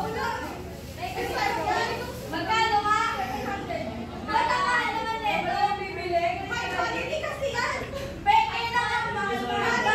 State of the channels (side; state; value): both; identical; correlation 1.00